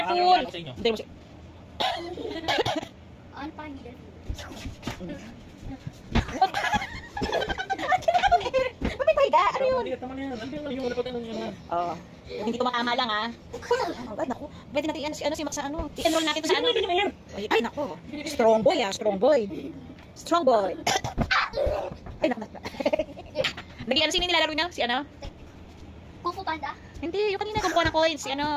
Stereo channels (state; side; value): identical; both; correlation 1.00